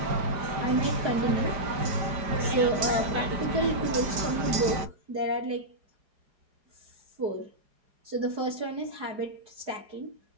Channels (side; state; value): left; late; 5.1 ms